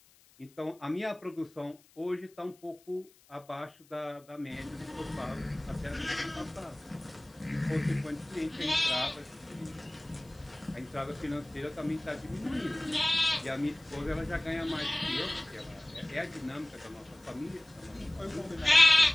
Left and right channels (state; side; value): noise; left; hiss, 28 dB below the sound